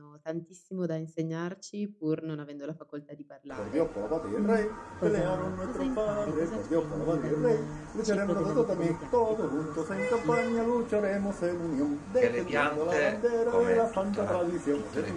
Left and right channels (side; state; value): both; identical; correlation 1.00